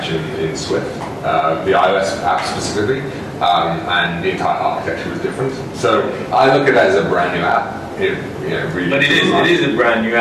in Swift, the iOS app specifically, and the entire architecture was different. So I look at it as a brand new app. Really. But it is a brand new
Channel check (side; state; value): both; identical; correlation 1.00